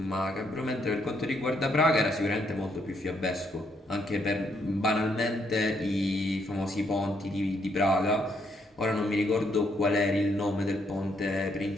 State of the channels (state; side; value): normal; both; correlation 0.73